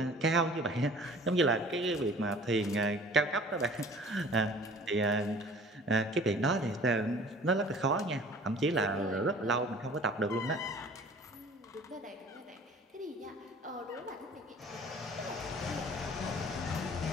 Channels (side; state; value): both; normal; correlation 0.48